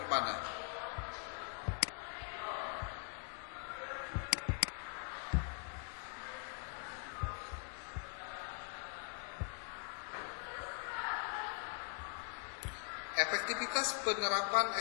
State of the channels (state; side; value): quieter; right; 32.0 dB